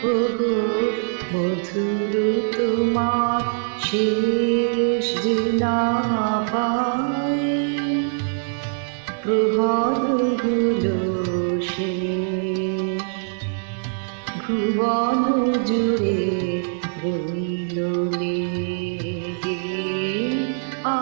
ওগো মধুর তোমার শেষ যে না পাই, প্রভাত গুলো শেষ ভুবন জুড়ে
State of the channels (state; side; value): silent; left; 64 dB below the other